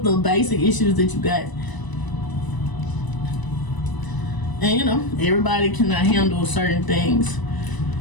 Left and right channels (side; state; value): right; late; 1.0 ms